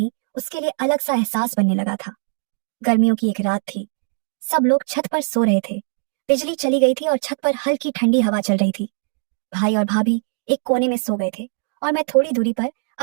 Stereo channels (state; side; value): silent; left; 56 dB below the other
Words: उसके लिए अलग सा एहसास बनने लगा था। गर्मियों की एक रात थी। सब लोग छत पर सो रहे थे। बिजली चली गई थी और छत पर हल्की ठंडी हवा चल रही थी। भाई और भाभी एक कोने में सो गए थे और मैं थोड़ी दूरी पर